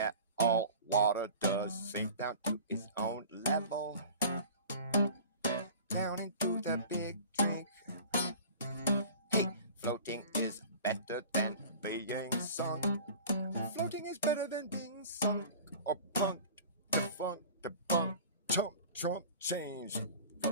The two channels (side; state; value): both; inverted; correlation -0.41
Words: all water does sink down to its own level. Down into the big drink. Hey, floating is better than being sunk. Floating is better than being sunk or punked, defunct, debunked, chump, trump, change.